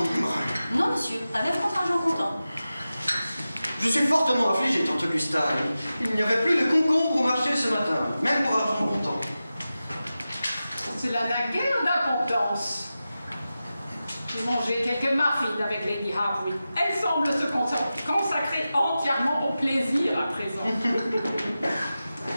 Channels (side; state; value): both; inverted; correlation -0.94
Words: Non, monsieur, pas même contre argent comptant. Je suis fortement affligé, tante Augusta. Il n'y avait plus de concombre au marché ce matin, même pour argent comptant. Cela n'a guère d'importance. J'ai mangé quelques muffins avec Lady Harwood. Elle semble se consacrer entièrement au plaisir à présent.